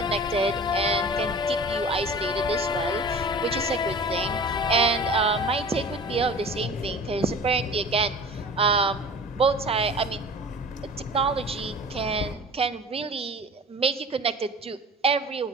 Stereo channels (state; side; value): normal; both; correlation 0.41